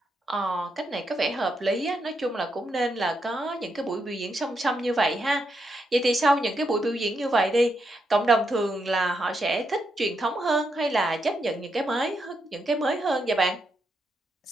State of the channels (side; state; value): both; normal; correlation 0.81